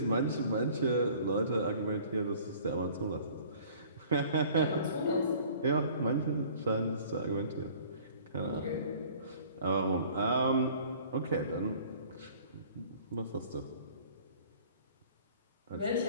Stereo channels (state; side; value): inverted; both; correlation -0.51